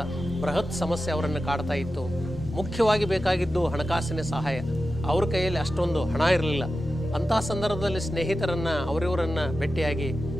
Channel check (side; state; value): both; normal; correlation 0.92